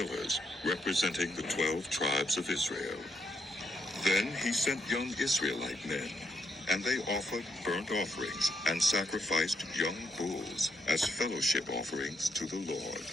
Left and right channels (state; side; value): normal; both; correlation 0.77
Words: representing the 12 tribes of Israel. Then he sent young Israelite men, and they offered burnt offerings and sacrificed young bulls as fellowship offerings to the Lord.